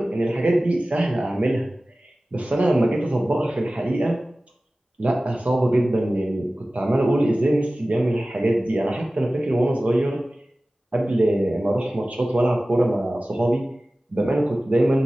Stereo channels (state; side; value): normal; both; correlation 0.97